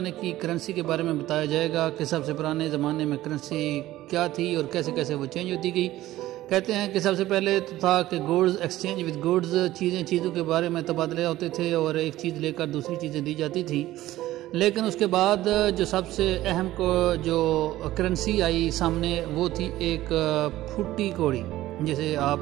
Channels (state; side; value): quieter; left; 15.4 dB